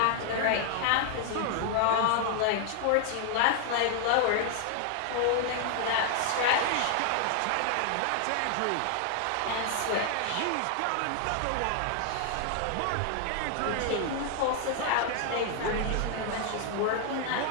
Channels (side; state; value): both; different; correlation 0.00